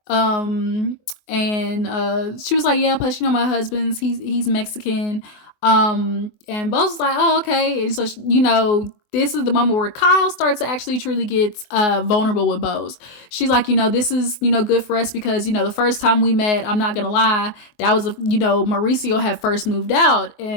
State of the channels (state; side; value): late; right; 24 ms